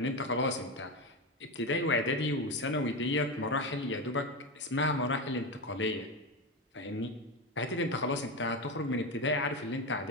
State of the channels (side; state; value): both; normal; correlation 0.16